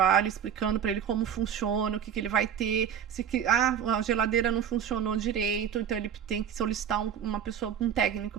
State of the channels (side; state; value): left; quieter; 8.7 dB